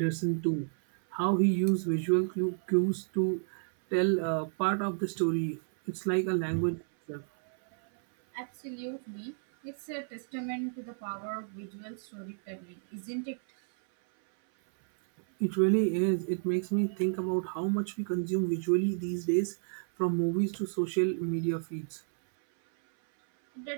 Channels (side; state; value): left; silent; 57 dB below the other